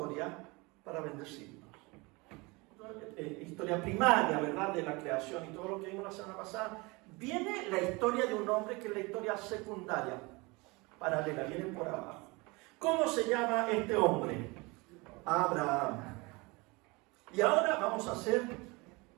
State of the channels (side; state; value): left; quieter; 25.7 dB